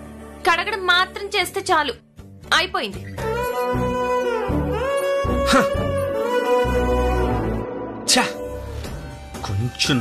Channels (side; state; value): both; identical; correlation 1.00